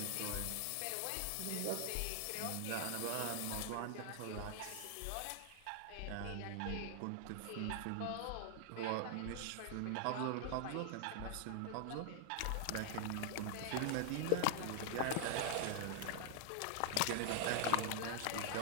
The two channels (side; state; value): both; different; correlation -0.01